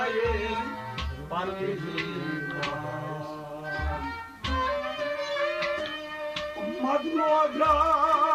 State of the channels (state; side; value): identical; both; correlation 1.00